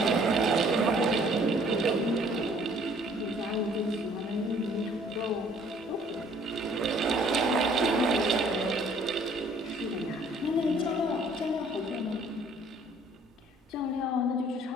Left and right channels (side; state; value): both; normal; correlation 0.58